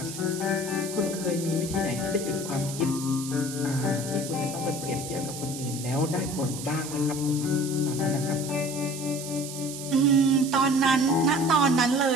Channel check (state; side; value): noise; right; hiss, 10 dB below the sound